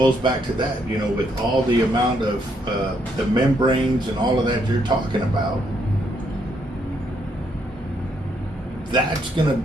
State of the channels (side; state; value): both; normal; correlation 0.74